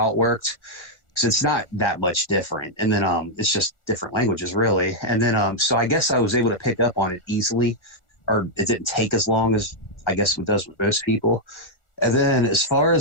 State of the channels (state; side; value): late; right; 1.4 ms